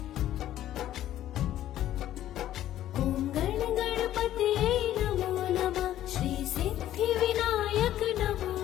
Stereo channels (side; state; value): right; quieter; 12.6 dB